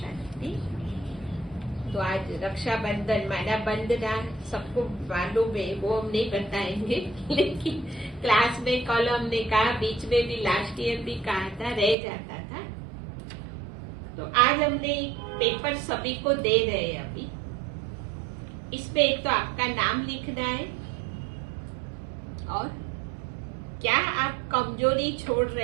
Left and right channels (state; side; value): drops out; left; at 12.0 s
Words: तो आज रक्षाबंधन माना बंधना सबको मालूम है, वो हम नहीं बताएंगे, लेकिन क्लास में कल हमने कहा, बीच में भी लास्ट ईयर भी कहा था, रह जाता था। तो आज हमने पेपर सभी को दे रहे हैं। अभी इसमें एक तो आपका नाम लिखना है और क्या आप कमजोरी छोड़